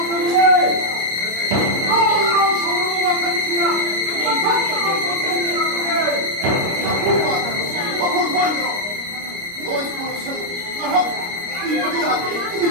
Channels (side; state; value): left; late; 29 ms